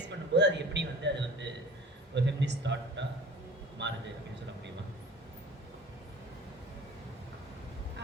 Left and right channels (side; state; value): both; normal; correlation 0.43